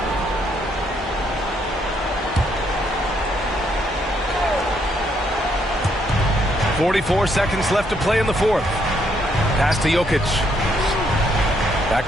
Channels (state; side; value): normal; both; correlation 0.72